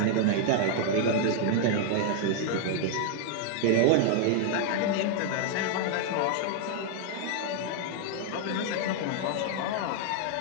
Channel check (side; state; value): both; different; correlation 0.00